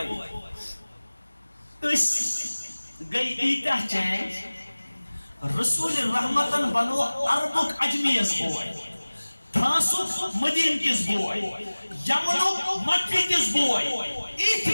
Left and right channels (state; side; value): inverted; both; correlation -1.00